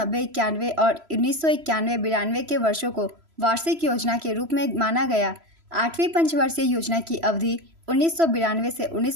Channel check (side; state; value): left; late; 3.0 ms